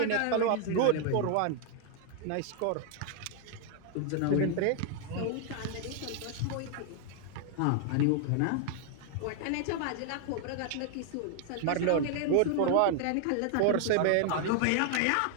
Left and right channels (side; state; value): both; different; correlation 0.00